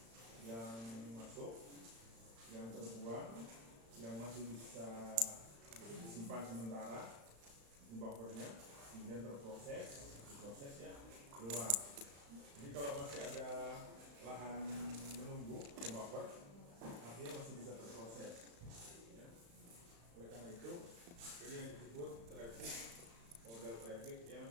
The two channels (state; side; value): late; left; 35 ms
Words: yang masuk, yang terbuang, yang masih bisa disimpan sementara di buffernya, kemudian diproses ya, keluar. Jadi kalau masih ada lahan menunggu di buffer, artinya masih bisa terproses. Ya. Oleh karena itu, ini yang disebut model traffic yang